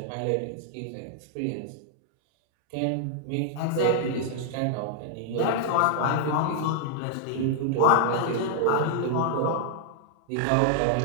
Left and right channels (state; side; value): different; both; correlation -0.01